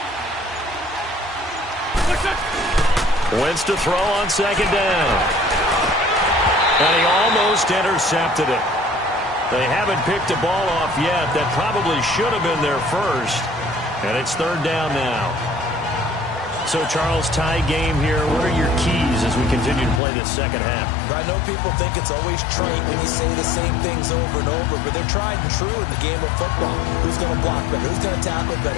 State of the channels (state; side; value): drops out; right; at 20.0 s